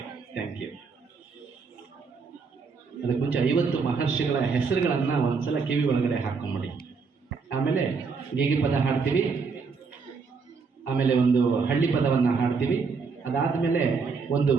thank you. ಅದಕ್ಕೆ ಮುಂಚೆ 50 ಮಹರ್ಷಿಗಳ ಹೆಸರುಗಳನ್ನು ಒಂದ್ಸಲ ಕಿವಿ ಒಳಗಡೆ ಹಾಕೊಂಬಿಡಿ. ಆಮೇಲೆ ಗೀಗಿ ಪದ ಹಾಡ್ತೀವಿ, ಆಮೇಲೆ ಒಂದು ಹಳ್ಳಿ ಪದವನ್ನು ಹಾಡ್ತೀವಿ. ಅದಾದಮೇಲೆ ಒಂದು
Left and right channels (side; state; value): left; quieter; 5.0 dB